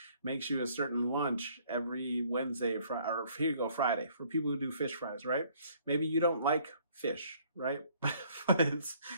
makes you a certain lunch every Wednesday or Friday, or here you go, Friday, for people who do fish fries, right? Maybe you don't like fish, right? But it's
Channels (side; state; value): both; inverted; correlation -0.61